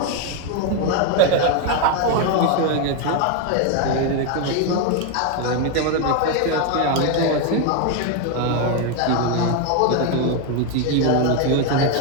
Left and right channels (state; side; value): different; both; correlation 0.01